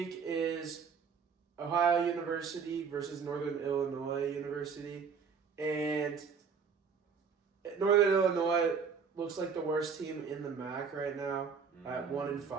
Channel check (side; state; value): left; quieter; 6.0 dB